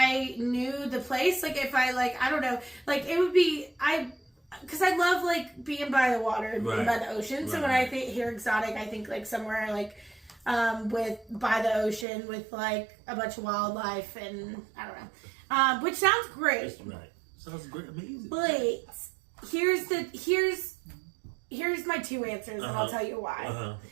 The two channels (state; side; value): drops out; left; at 12.1 s